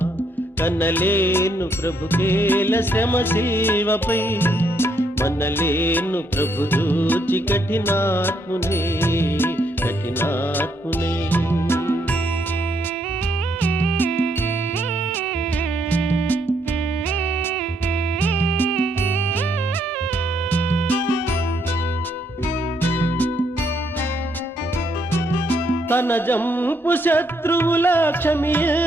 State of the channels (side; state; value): both; normal; correlation 0.73